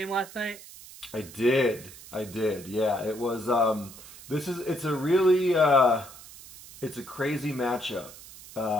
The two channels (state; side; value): noise; right; hiss, 17 dB below the sound